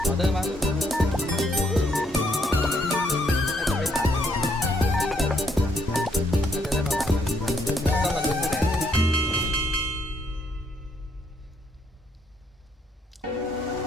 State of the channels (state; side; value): normal; both; correlation 0.72